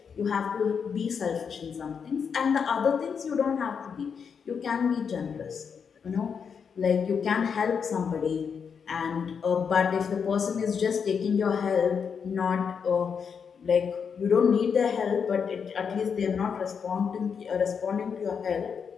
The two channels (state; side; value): quieter; right; 6.5 dB